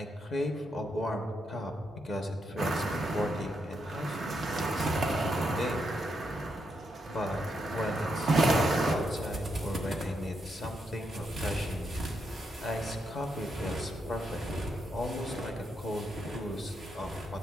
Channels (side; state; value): both; normal; correlation 0.81